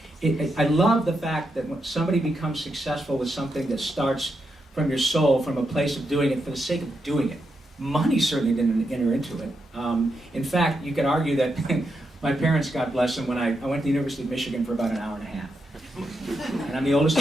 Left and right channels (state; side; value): normal; both; correlation 0.84